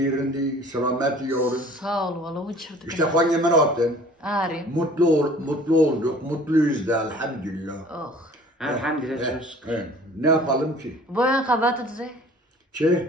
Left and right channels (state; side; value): normal; both; correlation 0.50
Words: selameti yorum. Sağ ol valla uçurduk. İşte hangi menaatten. Ari. Mutlu olduk, mutluyuz da elhamdülillah. Oh. Elhamdülillah çok şükür. Ne yapalım ki? Boyan kabatı dize.